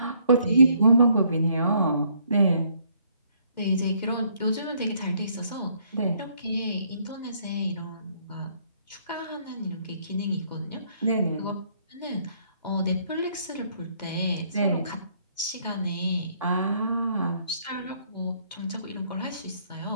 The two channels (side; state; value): both; inverted; correlation -0.67